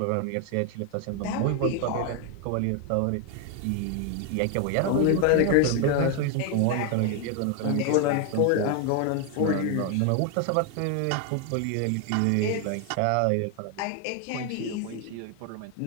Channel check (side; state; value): both; different; correlation 0.01